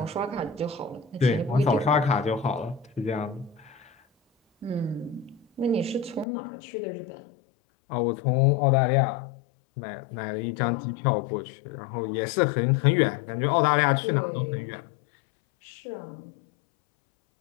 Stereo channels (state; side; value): drops out; right; at 6.2 s